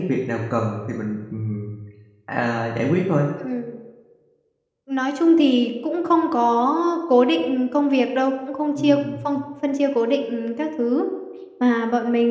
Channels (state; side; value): identical; both; correlation 1.00